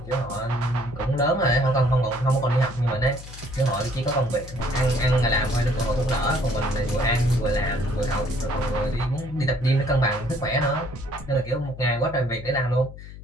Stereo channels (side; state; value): left; noise; hum, 14 dB below the sound